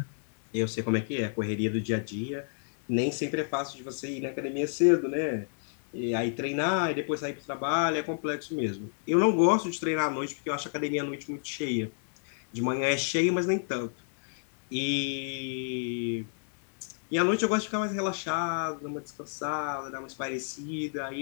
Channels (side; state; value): right; silent; digital silence